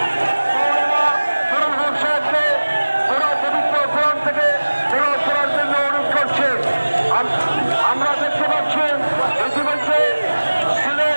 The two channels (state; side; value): inverted; both; correlation -1.00